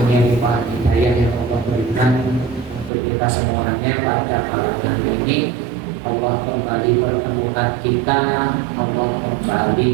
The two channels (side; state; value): left; drops out; at 2.9 s